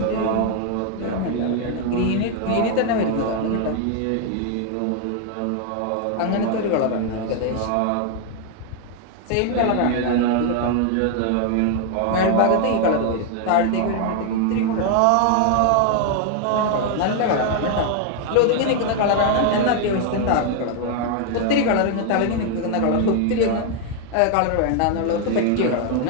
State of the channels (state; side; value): different; both; correlation 0.00